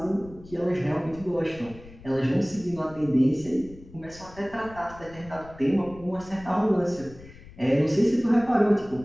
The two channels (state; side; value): noise; left; rumble, 19 dB below the sound